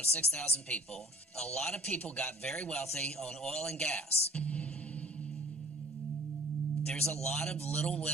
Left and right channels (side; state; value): both; normal; correlation 0.52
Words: 6,000 people. A lot of people got very wealthy on oil and gas. There's a lot of little